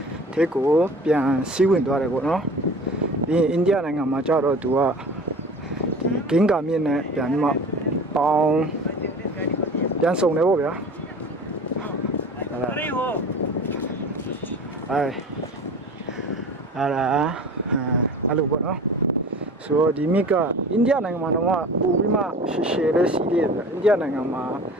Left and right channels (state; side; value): normal; both; correlation 0.40